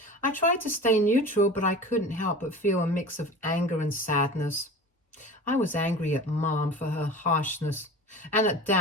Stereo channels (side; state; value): both; normal; correlation 0.35